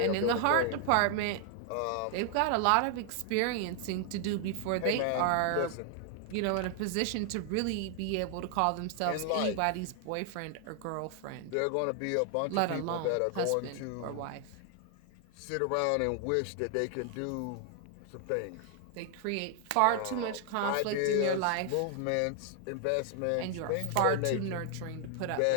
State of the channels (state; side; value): different; both; correlation 0.00